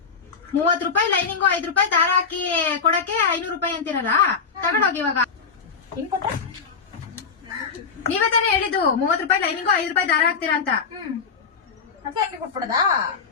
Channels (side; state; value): right; quieter; 5.5 dB